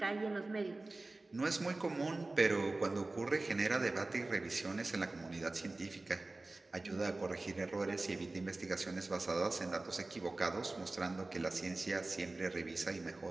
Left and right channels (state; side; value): quieter; left; 3.1 dB